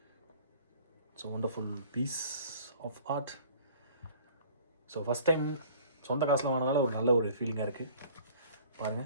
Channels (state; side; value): inverted; both; correlation -0.50